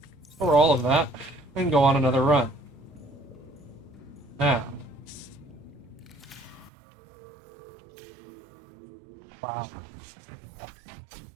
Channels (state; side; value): drops out; left; at 6.7 s